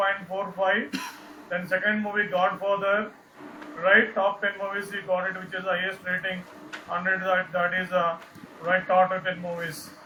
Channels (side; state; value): both; identical; correlation 1.00